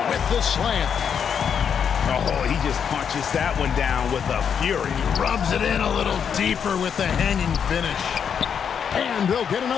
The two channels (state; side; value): quieter; right; 7.5 dB